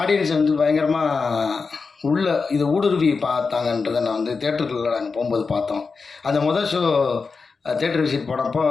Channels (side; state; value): right; quieter; 4.7 dB